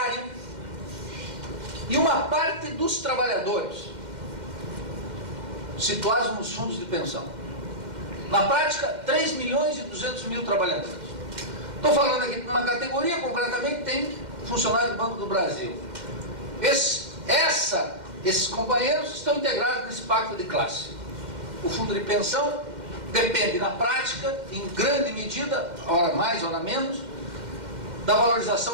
e uma parte dos trabalhadores, situados nos fundos de pensão. Na prática, 3 milhões e 200 mil trabalhadores. Estou falando aqui de uma categoria, concretamente, tem funcionário do Banco do Brasil. Esses companheiros estão integrados nesse pacto de classe. O fundo de pensão depende, na prática, em grande medida, hora mais, hora menos, da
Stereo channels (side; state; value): left; late; 2.1 ms